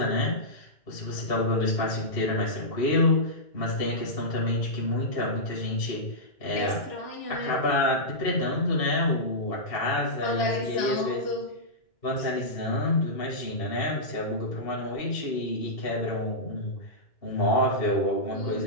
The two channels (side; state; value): right; late; 2.7 ms